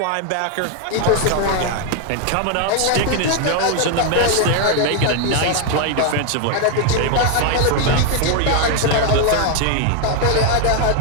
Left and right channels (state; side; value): different; both; correlation 0.01